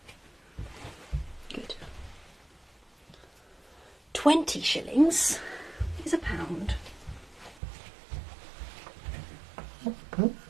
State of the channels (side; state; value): left; drops out; at 7.6 s